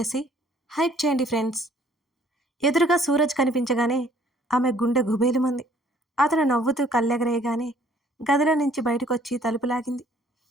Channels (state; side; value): normal; both; correlation 0.59